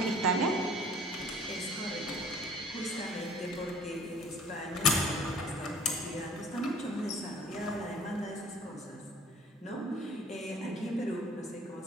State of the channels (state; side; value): normal; both; correlation 0.51